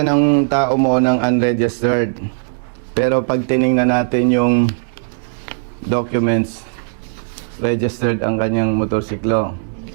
ng tao mo ng unregistered. Pero pag tiningnan natin yung documents, registered ang kanyang motorsiklo.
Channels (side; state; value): left; silent; digital silence